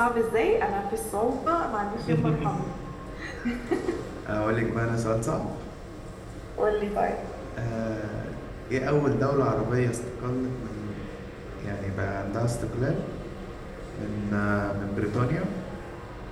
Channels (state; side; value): identical; both; correlation 1.00